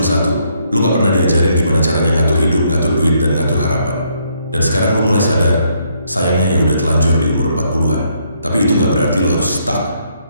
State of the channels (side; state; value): both; inverted; correlation -0.72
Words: satu, lo gak pernah diajarin gimana caranya ngatur hidup, ngatur duit, dan ngatur harapan. Dan sekarang lo mulai sadar, sayangnya ya udah telanjur di umur 40-an. Tapi itu gak berarti lo harus stuck.